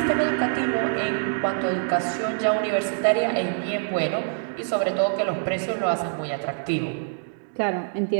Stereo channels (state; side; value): silent; left; digital silence